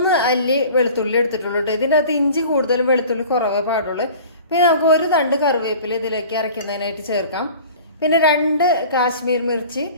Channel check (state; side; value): inverted; both; correlation -0.43